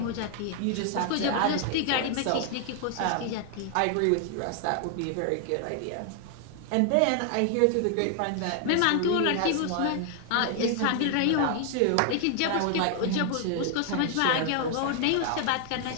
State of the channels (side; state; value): both; different; correlation 0.00